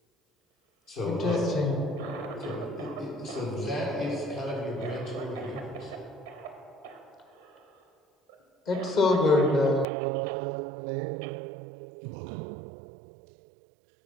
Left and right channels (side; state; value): left; drops out; at 9.9 s